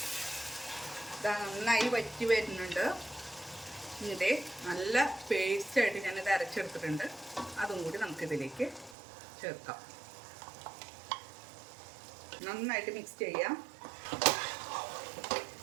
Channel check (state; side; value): drops out; left; at 9.0 s